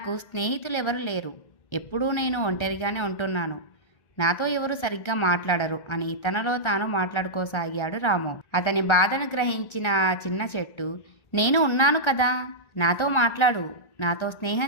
స్నేహితులు ఎవరు లేరు. ఎప్పుడూ నేను ఒంటరిగానే ఉంటున్నాను. నాతో ఎవరు సరిగ్గా మాట్లాడరు అని తనలో తాను మాట్లాడుకోసాగాడు రాము. అతని బాధను గ్రహించిన ఆ చిన్న చెట్టు, నేను ఉన్నాను కదా, నాతో మాట్లాడు, నాతో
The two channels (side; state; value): right; late; 1.3 ms